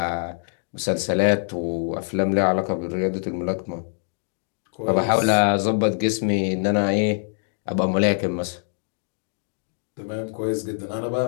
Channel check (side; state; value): right; silent; 61 dB below the other